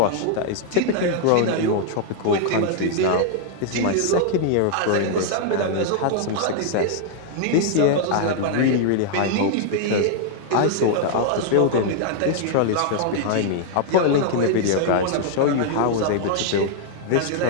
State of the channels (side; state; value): both; different; correlation 0.00